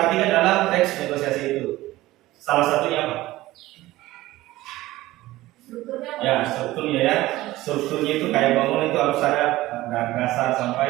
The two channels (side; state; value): left; quieter; 17.3 dB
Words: dalam teks negosiasi itu. Salah satunya apa? Strukturnya apa? Ya, strukturnya ya. Strukturnya itu kayak bangun itu harus ada dari dasar